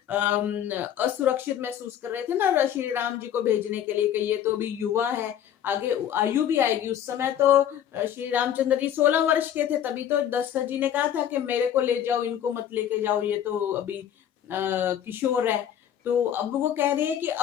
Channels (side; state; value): right; quieter; 10.0 dB